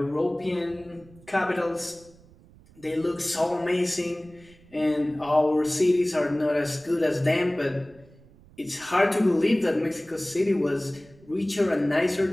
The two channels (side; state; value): right; noise; rumble, 26 dB below the sound